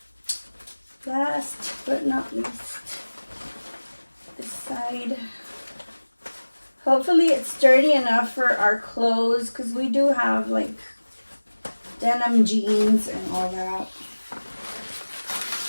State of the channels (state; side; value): inverted; both; correlation -1.00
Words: last but not least, this side. Hopefully it's sturdy enough for our clothes, because we do have like denim jeans and all that.